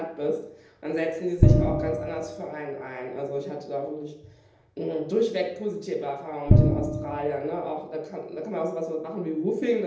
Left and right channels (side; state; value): both; identical; correlation 1.00